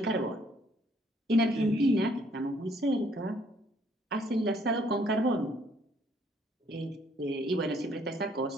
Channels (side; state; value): both; normal; correlation 0.65